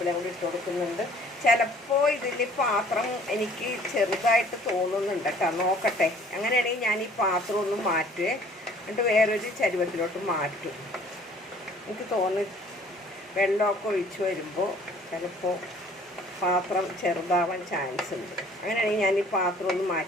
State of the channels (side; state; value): both; normal; correlation 0.55